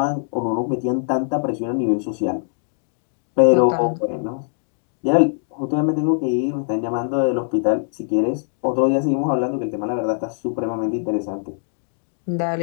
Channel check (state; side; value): silent; right; digital silence